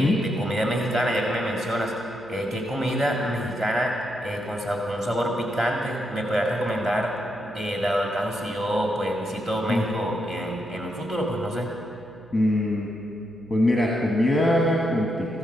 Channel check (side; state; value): right; noise; hum, 28 dB below the sound